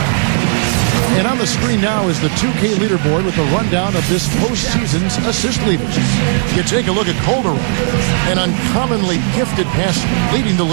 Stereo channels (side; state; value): left; silent; 64 dB below the other